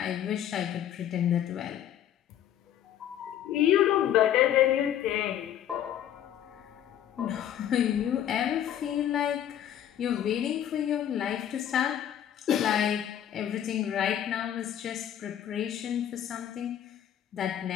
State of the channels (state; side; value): quieter; right; 10.6 dB